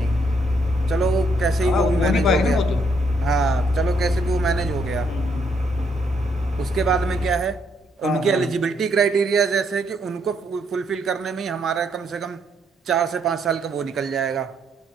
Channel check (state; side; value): normal; both; correlation 0.73